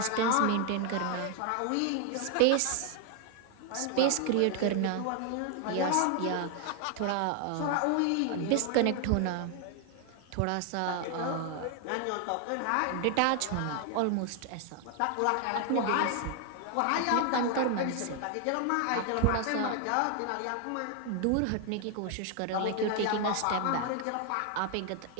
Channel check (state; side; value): different; both; correlation 0.00